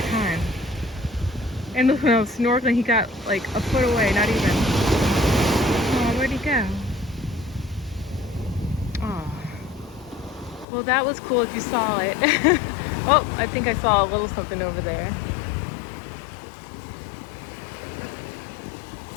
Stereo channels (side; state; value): right; drops out; at 10.7 s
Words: time. And when I was snorkeling, he got like a foot away, not even. Oh, where'd he go? Oh. Well, that was cool if you saw it. Oh, I think I saw a little something over there.